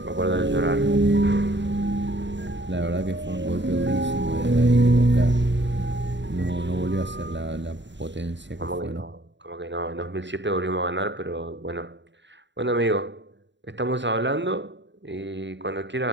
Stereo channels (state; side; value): late; left; 0.52 ms